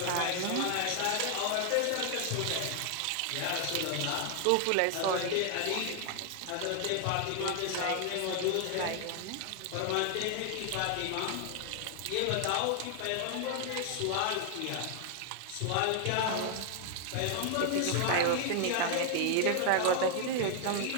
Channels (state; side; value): different; both; correlation 0.00